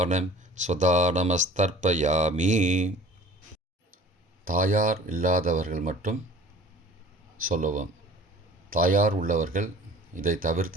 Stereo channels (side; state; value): both; normal; correlation 0.46